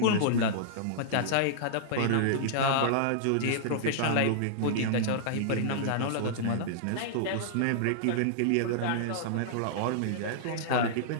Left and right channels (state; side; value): different; both; correlation -0.02